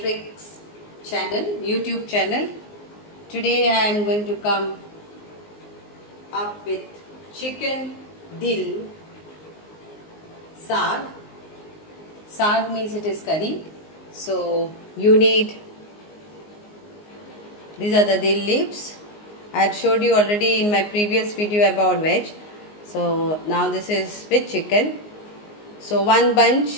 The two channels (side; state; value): right; late; 19 ms